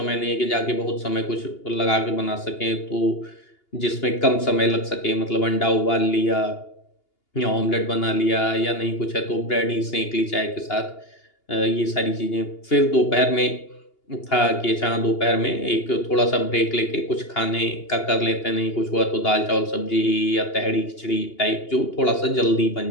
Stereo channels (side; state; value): right; late; 2.8 ms